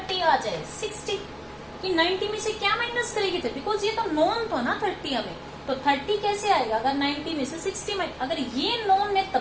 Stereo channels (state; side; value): identical; both; correlation 1.00